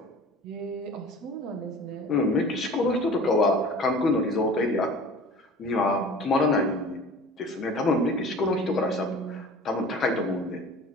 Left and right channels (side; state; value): both; normal; correlation 0.42